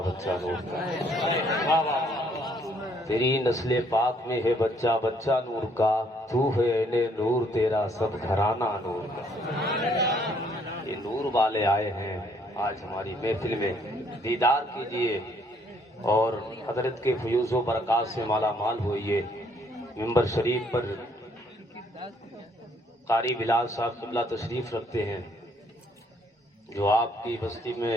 بچہ نور کا، تیری نسل پاک میں ہے بچہ بچہ نور کا، تو ہے اہل نور تیرا سب گھرانہ نور کا۔ یہ نور والے آئے ہیں آج ہماری محفل میں، دیدار کیجئے اور حضرت کے فیوز و برکات سے مالا مال ہوئیے۔ ممبر شریف پر قاری بلال صاحب قبلہ تشریف رکھتے ہیں، جو آپ کی بستی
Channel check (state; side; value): normal; both; correlation 0.66